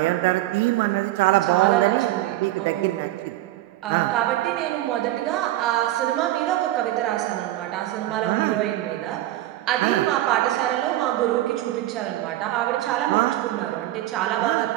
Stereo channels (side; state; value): left; quieter; 15.3 dB